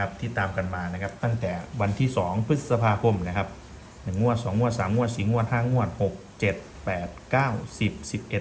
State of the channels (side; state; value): both; identical; correlation 1.00